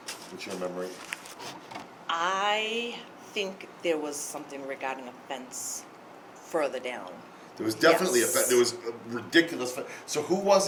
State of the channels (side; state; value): both; identical; correlation 1.00